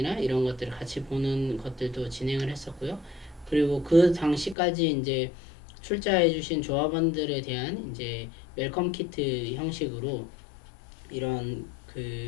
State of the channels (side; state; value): right; drops out; at 4.5 s